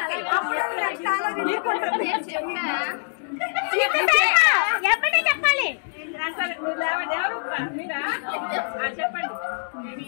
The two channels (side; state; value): right; silent; digital silence